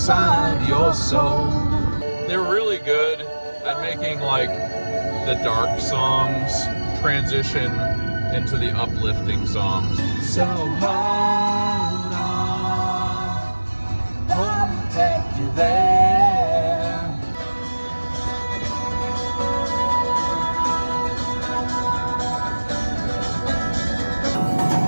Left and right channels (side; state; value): both; inverted; correlation -1.00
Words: your soul. They're really good at making like the dark songs transition into the uplifting songs. So hold on, I'll take you there.